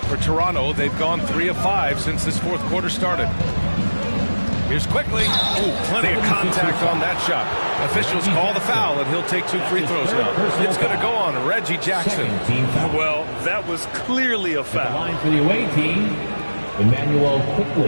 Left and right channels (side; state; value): both; inverted; correlation -1.00